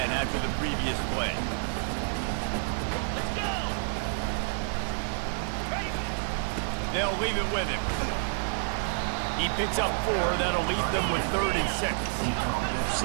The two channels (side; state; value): left; silent; 59 dB below the other